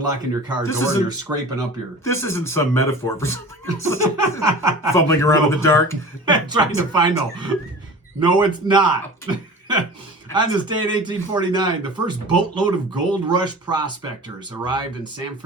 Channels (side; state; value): both; normal; correlation 0.38